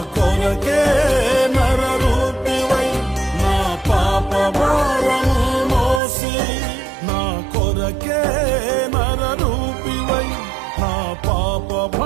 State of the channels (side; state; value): left; drops out; at 6.0 s